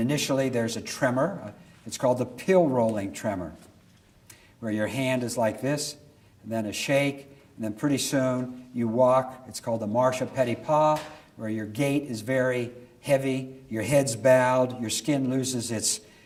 there's a tremor. It's called the pill rolling tremor, where your hand is like this, and then a shake, and then pretty soon you walk. It's called the marche à petit pas, where your gait is very heavy, your head's bowed, your skin loses its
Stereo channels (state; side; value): identical; both; correlation 1.00